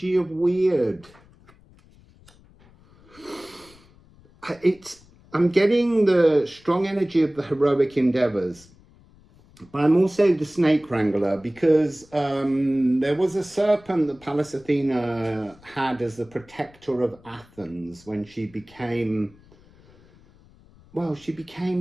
of weird. I'm getting the strong energy of the heroic endeavors. But I'm also the snake wrangler because there was a serpent that Pallas Athena had as the protector of Athens when she became,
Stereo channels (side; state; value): left; noise; rumble, 27 dB below the sound